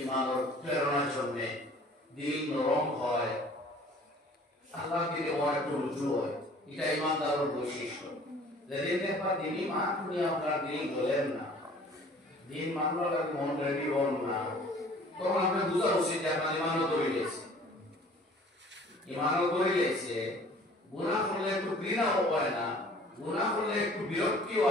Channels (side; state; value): both; normal; correlation 0.51